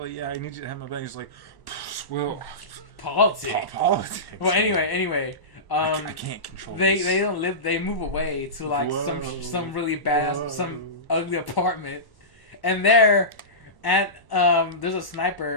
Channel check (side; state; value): right; late; 1.1 ms